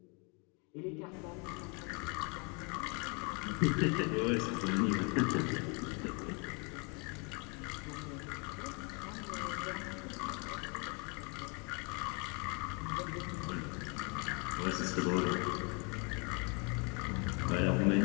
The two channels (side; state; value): right; quieter; 33.5 dB